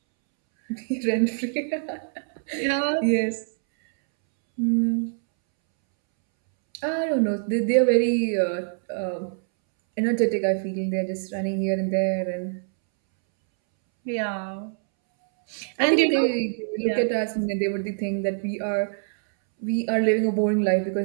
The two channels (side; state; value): left; silent; 62 dB below the other